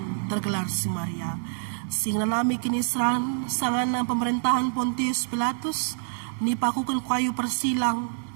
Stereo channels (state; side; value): silent; left; digital silence